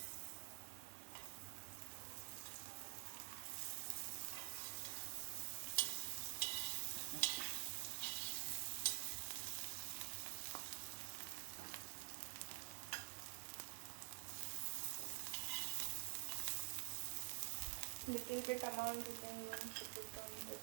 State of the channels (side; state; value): left; silent; digital silence